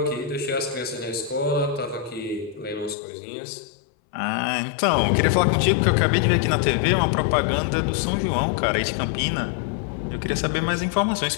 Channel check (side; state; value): right; drops out; at 3.0 s